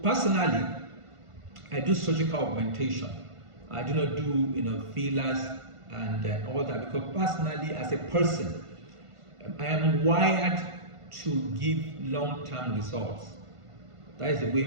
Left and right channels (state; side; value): late; left; 1.5 ms